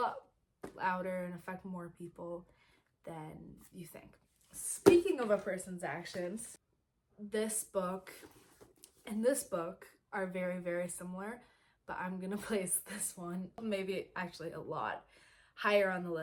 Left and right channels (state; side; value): identical; both; correlation 1.00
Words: louder and affect more people than you think. Speaking of a person's actions, this book and this book are very, very similar, but I'm gonna place this one, maybe actually a lot higher on the